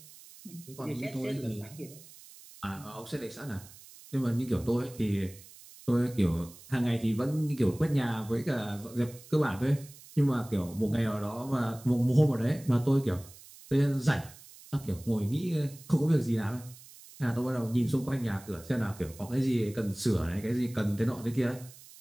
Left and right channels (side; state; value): right; noise; hiss, 20 dB below the sound